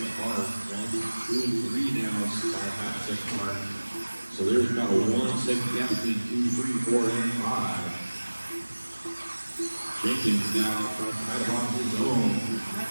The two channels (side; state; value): both; inverted; correlation -1.00